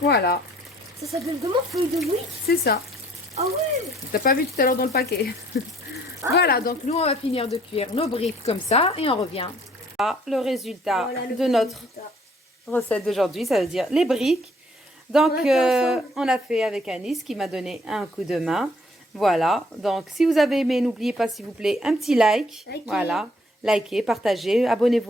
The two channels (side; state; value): both; normal; correlation 0.62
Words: Voilà. Ça s'appelle comment, feuilles de briques? C'est ça. Ah ouais. T'as pas vu tout à l'heure dans le paquet. Voilà, donc nous on va finir de cuire nos briques comme ça et on revient. Ah, le résultat de notre recette d'aujourd'hui, ça veut dire les briques. Donc on a fait avec Anis qui m'a donné un coup de main. Voilà, donc si vous avez aimé, n'oubliez pas s'il vous plaît un petit like. Voilà, likez, partagez,